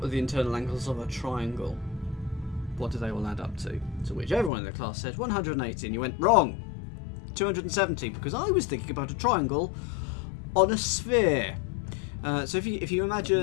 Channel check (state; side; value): drops out; right; at 4.5 s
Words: the internal angles of a triangle. What do they all add up to? To which everyone in the class said 180, and you went wrong. 270, because I was thinking about a triangle on a sphere. So if you